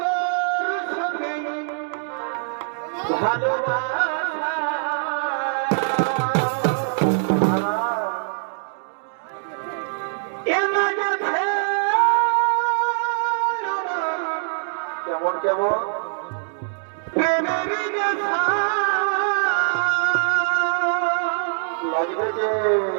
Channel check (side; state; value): left; silent; digital silence